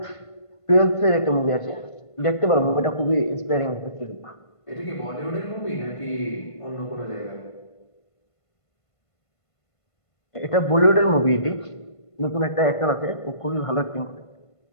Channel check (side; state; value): right; late; 1.5 ms